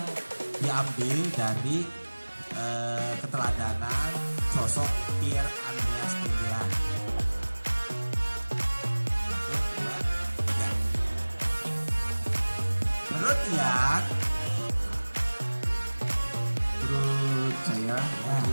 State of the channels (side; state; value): both; inverted; correlation -1.00